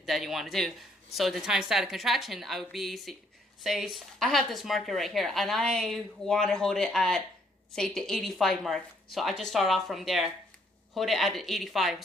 you want to do. So the time static contraction, I would be say I have this marker right here, and I want to hold it at, say, the 85 mark. So I just start off from there, hold it at the 85,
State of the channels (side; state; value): both; normal; correlation 0.68